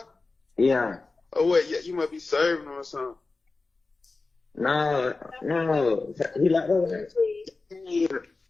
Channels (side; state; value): right; quieter; 3.7 dB